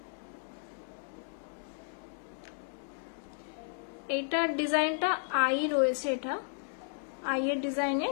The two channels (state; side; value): silent; right; digital silence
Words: এইটার ডিজাইনটা আই রয়েছে, এটা আই এর ডিজাইনে